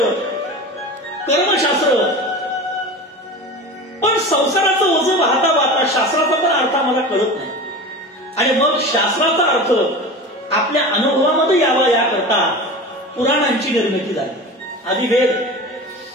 कर्मशास्त्र. पण संसाराचं ओझं वाहता वाहता शास्त्राचा पण अर्थ आम्हाला कळत नाही. आणि मग शास्त्राचा अर्थ आपल्या अनुभवामध्ये यावा याकरता पुराणांची निर्मिती झाली. आधी वेद,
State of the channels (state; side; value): normal; both; correlation 0.31